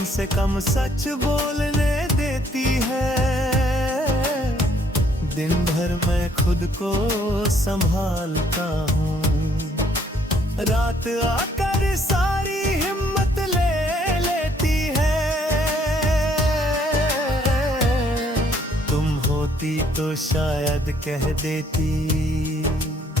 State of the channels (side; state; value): both; normal; correlation 0.65